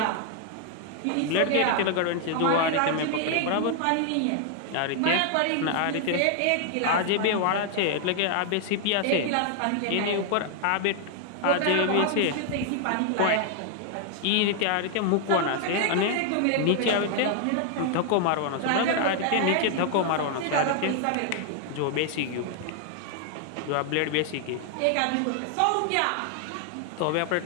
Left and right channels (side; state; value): both; different; correlation 0.00